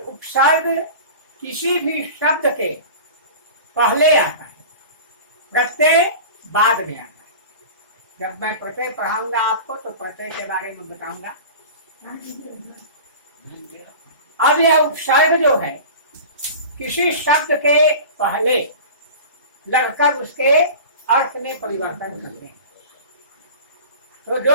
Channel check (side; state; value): both; inverted; correlation -0.36